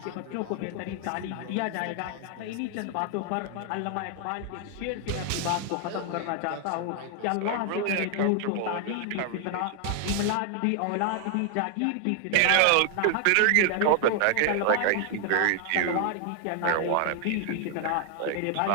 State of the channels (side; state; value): both; different; correlation 0.00